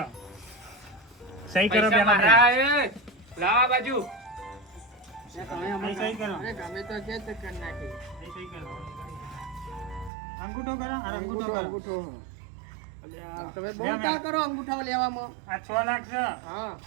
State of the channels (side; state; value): left; drops out; at 10.1 s